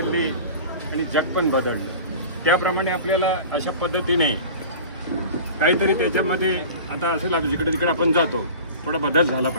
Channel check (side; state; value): both; inverted; correlation -0.38